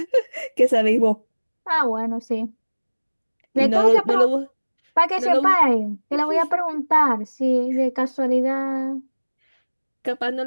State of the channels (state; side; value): inverted; both; correlation -1.00